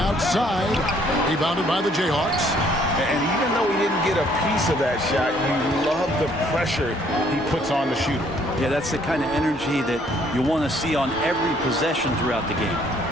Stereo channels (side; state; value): both; normal; correlation 0.63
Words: Rebounded by the Jayhawks. And even though he didn't get a piece of that shot, you love the pressure he puts on the shooter. Yeah, that's the kind of energy that you want to see on every possession throughout the game.